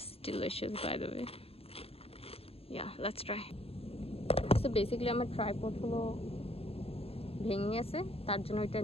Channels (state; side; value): late; right; 0.28 ms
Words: delicious by the way. Yeah, let's try. So basically আমার ট্রাইপড হলো ভেঙে গেছে, তার জন্য ওইটা